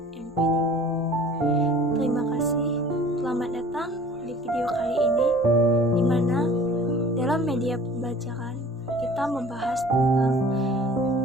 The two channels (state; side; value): normal; both; correlation 0.47